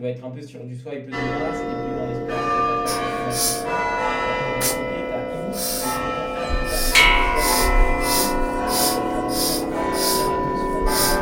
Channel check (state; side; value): identical; both; correlation 1.00